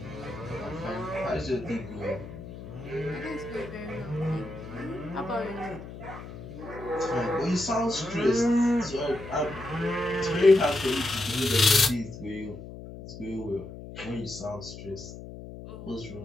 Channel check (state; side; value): noise; left; hum, 12 dB below the sound